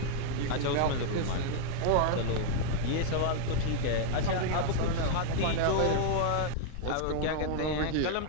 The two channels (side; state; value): both; different; correlation -0.01